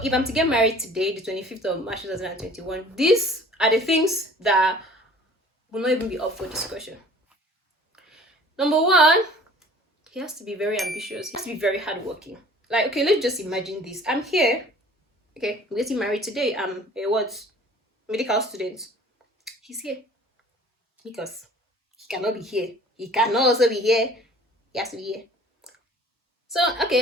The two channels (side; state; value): both; normal; correlation 0.49